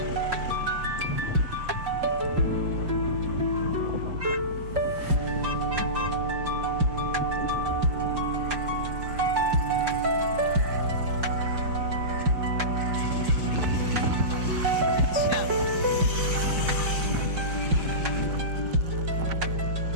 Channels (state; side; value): late; left; 5.5 ms